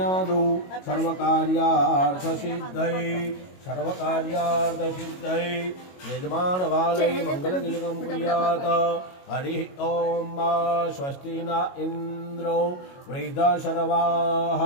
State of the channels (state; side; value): late; right; 22 ms